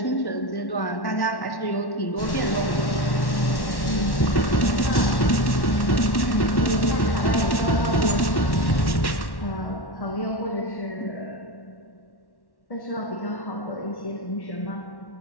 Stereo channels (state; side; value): late; right; 1.1 ms